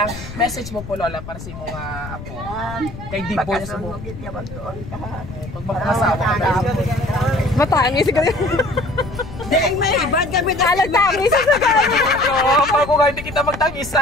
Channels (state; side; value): noise; left; rumble, 12 dB below the sound